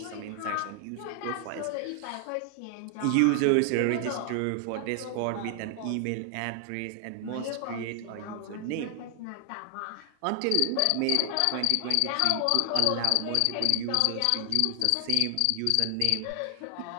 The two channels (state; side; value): different; both; correlation 0.00